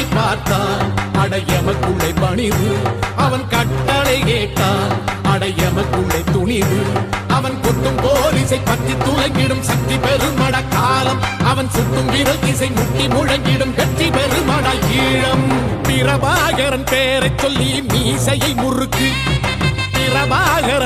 பார்த்தான் அடையமக்குள்ளே பணிவு அவன் கட்டளை கேட்டான் அடையமக்குள்ளே துணிவு அவன் கொத்தும் போலீசை பற்றி துளைங்கிடும் சக்தி பெருமட காலம் அவன் சுட்டும் விரல் திசை முட்டி முழங்கிடும் வெற்றி பெருமட ஈழம் பிரபாகரன் பேரை சொல்லி மீசையை முறுக்கு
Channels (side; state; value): both; identical; correlation 1.00